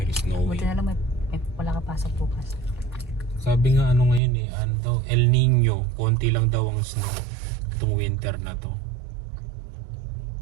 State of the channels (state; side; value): drops out; left; at 4.2 s